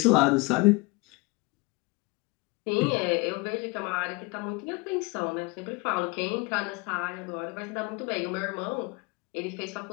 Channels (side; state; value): right; quieter; 25.4 dB